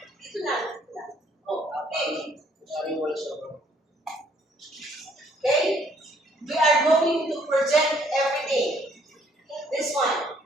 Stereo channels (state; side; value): normal; both; correlation 0.64